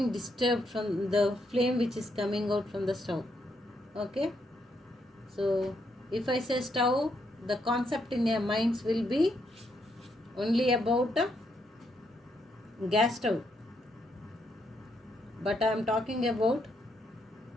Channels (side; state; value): both; normal; correlation 0.77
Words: disturbed from the flame which is coming out from the stove. Okay, so if I say stove, the concept in your minds will be only about a gas stove, but I am talking about